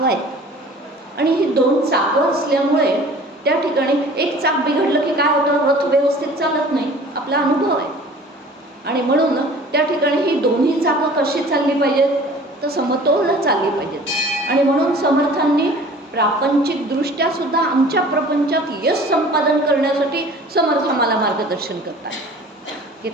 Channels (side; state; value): both; normal; correlation 0.46